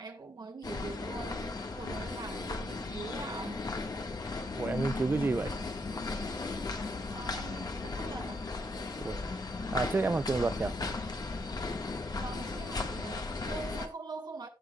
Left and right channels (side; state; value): both; normal; correlation 0.75